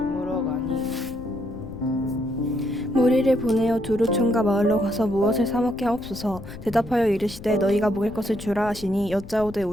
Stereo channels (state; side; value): noise; left; rumble, 14 dB below the sound